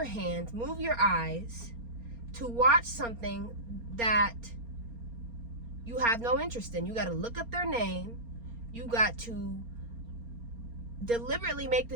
hands, move your eyes to watch something that you have no interest in. You got to look up their name. You got to deliberately make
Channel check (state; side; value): late; left; 4.3 ms